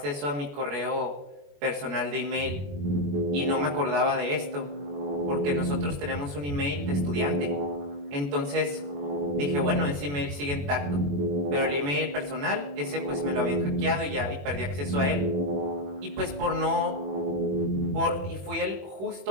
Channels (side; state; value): left; late; 21 ms